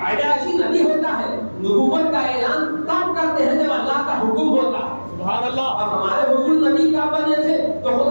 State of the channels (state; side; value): inverted; both; correlation -1.00